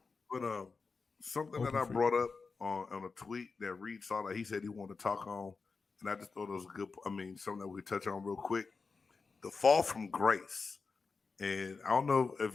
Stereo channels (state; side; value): quieter; right; 4.6 dB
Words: But something Open that I free. brought up on a tweet that Reed saw that he said he wanted to talk on, and I just thought it was something that we could touch on real quick. The fall from grace. And I don't know if